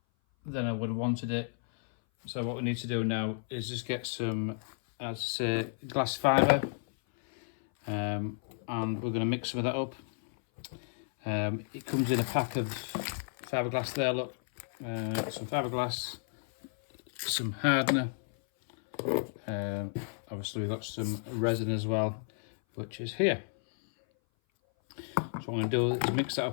than I would have wanted it. So what we need to do now is just get some, as I say, glass fibre, and we're going to mix some of that up. It comes in a pack of fiberglass there, look. Some fiberglass, some hardener. Obviously we've got some resin as well, which is here. So what I'm going to do is mix that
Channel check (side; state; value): right; silent; 56 dB below the other